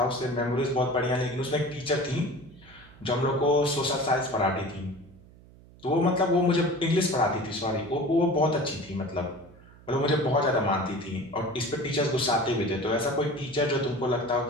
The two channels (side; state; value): right; noise; hum, 23 dB below the sound